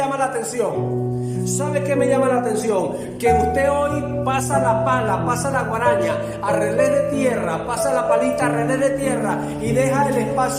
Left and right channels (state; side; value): identical; both; correlation 1.00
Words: la atención? ¿Sabe qué me llama la atención? Que usted hoy pasa la pala, pasa la guaraña a relé de tierra, pasa la palita a relé de tierra y deja el